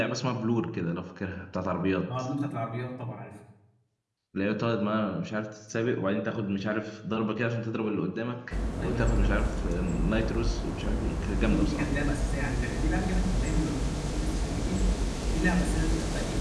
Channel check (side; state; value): both; identical; correlation 1.00